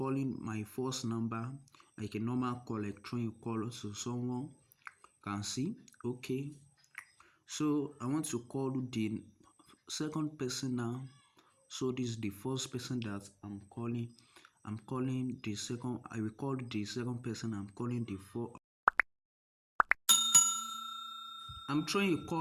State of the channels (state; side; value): identical; both; correlation 1.00